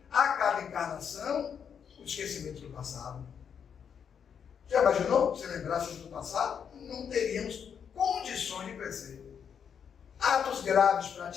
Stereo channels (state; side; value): quieter; right; 7.5 dB